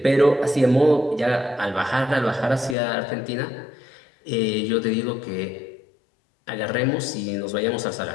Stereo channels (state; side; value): drops out; right; at 2.8 s